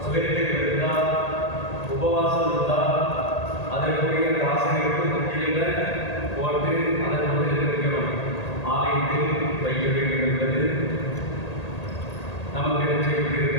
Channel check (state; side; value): late; right; 1.8 ms